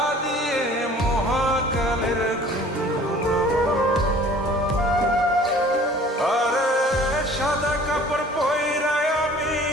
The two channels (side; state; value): both; normal; correlation 0.49